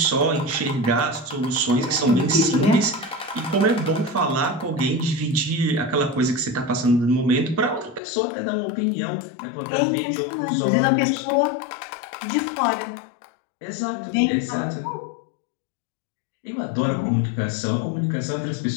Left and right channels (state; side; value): drops out; right; at 8.0 s